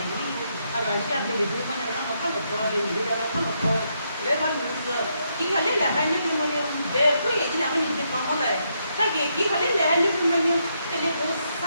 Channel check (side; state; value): both; inverted; correlation -0.78